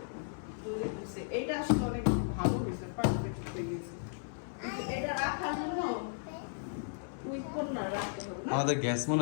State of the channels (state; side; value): silent; right; 54 dB below the other